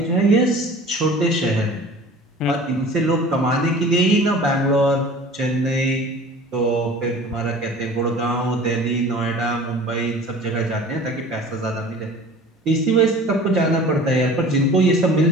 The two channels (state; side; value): normal; both; correlation 0.43